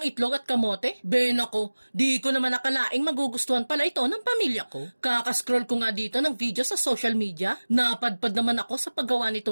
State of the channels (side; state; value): both; inverted; correlation -1.00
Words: itlog at kamote. Nako, di ko naman nakalaing magugustuhan pala ito ng pamilya ko. Kakascroll ko nga dito ng video sa social media. Napadpad naman ako sa paggawa